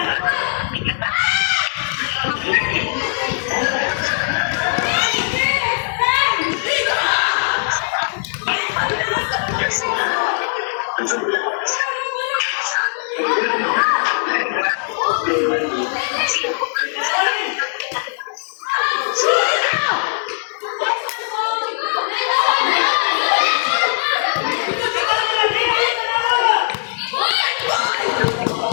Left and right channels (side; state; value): right; silent; digital silence